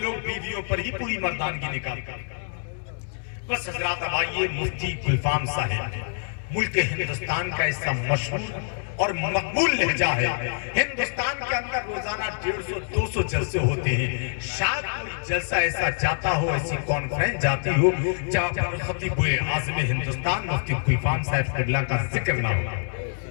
بیویوں پر ہی پوری مردانگی نکالتے ہیں۔ بس حضرات اب آئیے، مفتی گلفام صاحب ملک ہندوستان کا ایسا مشہور اور مقبول لہجہ ہے۔ ہندوستان کے اندر روزانہ 150-200 جلسے ہوتے ہیں، شاید کوئی جلسہ ایسا جاتا ہو، ایسی کانفرنس جاتی ہو جہاں پر خطیب اعظم ہندوستان مفتی گلفام صاحب قبلہ کا ذکر نہ ہو۔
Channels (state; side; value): silent; right; digital silence